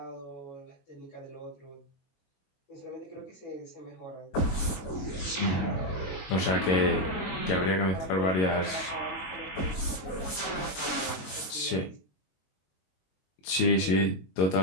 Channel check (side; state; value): right; late; 22 ms